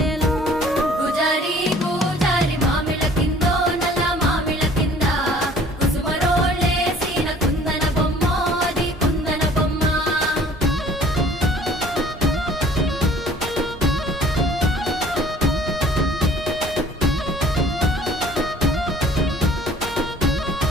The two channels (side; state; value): both; normal; correlation 0.53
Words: గుజారి గుజారి మామిళ్ళ కిందో నల్ల మామిళ్ళ కింద కుసుమరోళ్ళేసిన కుందన బొమ్మ అది కుందన బొమ్మ